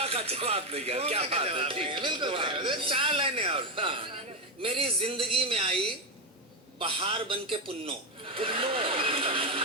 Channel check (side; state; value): both; normal; correlation 0.09